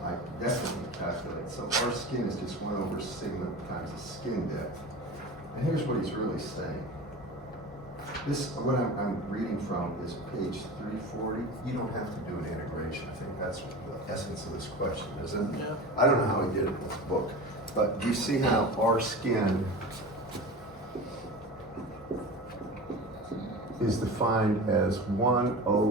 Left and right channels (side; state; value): both; normal; correlation 0.32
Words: definitely calculate. So R skin is just 1 over sigma times the skin depth. And here's what he's really saying. This, what I'm reading from is page 340. You don't have to do an integration. I think that's the essence of this question, isn't it? Yeah. I don't know how he did it with the book, but do you see how R skin is defined as 1